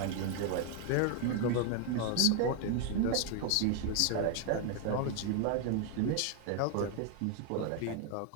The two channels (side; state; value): both; different; correlation 0.01